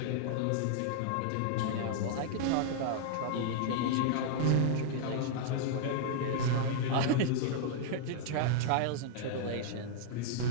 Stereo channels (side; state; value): both; different; correlation -0.01